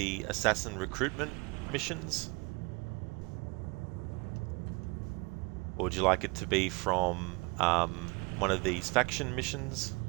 assassin recruitment missions? Or would you like it to be from one of these faction missions?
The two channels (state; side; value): quieter; left; 27.6 dB